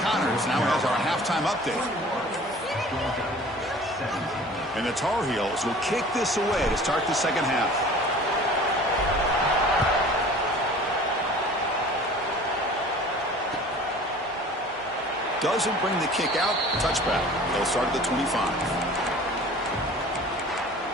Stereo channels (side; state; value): both; normal; correlation 0.45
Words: Connors now has our halftime update. And the Tar Heels will kick this away to start the second half. Doesn't bring the kick out. Touchback. They'll start at the 25.